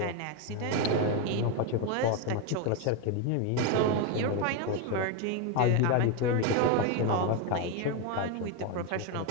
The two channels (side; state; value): both; different; correlation 0.02